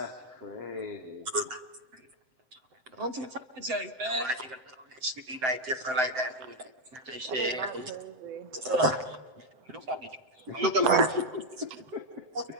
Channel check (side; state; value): left; late; 7.8 ms